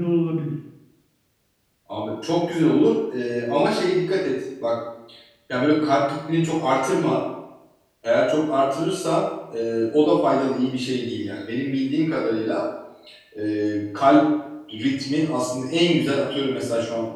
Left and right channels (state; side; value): identical; both; correlation 1.00